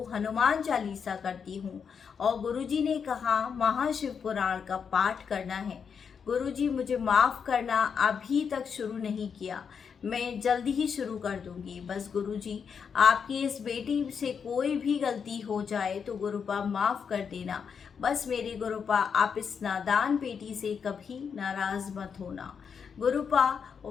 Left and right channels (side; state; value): right; quieter; 6.6 dB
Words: हनुमान चालीसा करती हूँ, और गुरुजी ने कहा महाशिव पुराण का पाठ करना है। गुरुजी मुझे माफ़ करना, अभी तक शुरू नहीं किया, मैं जल्दी ही शुरू कर दूंगी। बस गुरुजी, आपकी इस बेटी से कोई भी गलती हो जाए तो गुरुपा माफ़ कर देना। बस मेरे गुरुपा, आप इस नादान बेटी से कभी नाराज़ मत होना। गुरुपा,